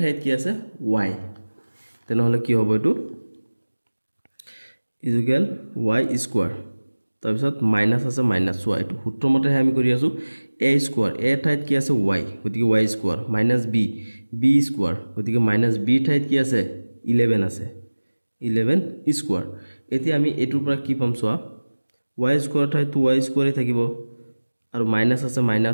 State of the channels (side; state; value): both; inverted; correlation -1.00